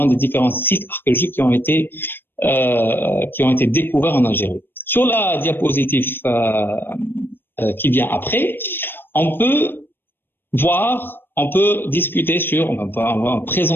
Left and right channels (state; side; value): late; right; 0.098 ms